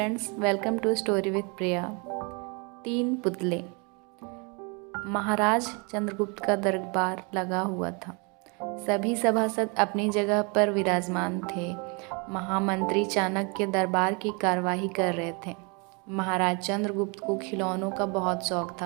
welcome to story with Priya. 3 पुतले। महाराज चंद्रगुप्त का दरबार लगा हुआ था। सभी सभासद अपनी जगह पर विराजमान थे। महामंत्री चाणक्य दरबार की कार्यवाही कर रहे थे। महाराज चंद्रगुप्त को खिलौनों का बहुत शौक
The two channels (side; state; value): left; quieter; 32.3 dB